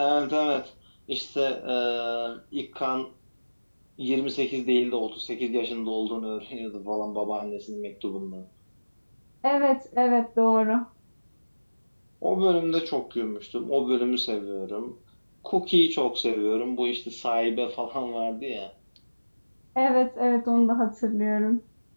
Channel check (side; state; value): both; inverted; correlation -1.00